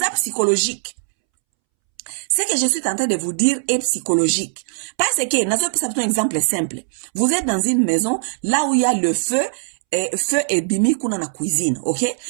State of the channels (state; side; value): silent; left; 66 dB below the other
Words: psychologique. Ce que je suis en train de vous dire est psychologique. Parce que, un exemple simple. Vous êtes dans une maison, là où il y a le feu et bimi kuna na cuisine, ok?